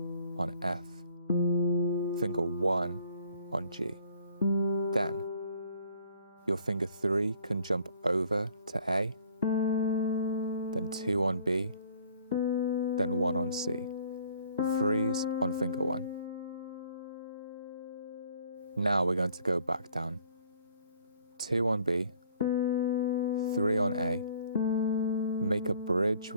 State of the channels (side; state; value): both; inverted; correlation -0.59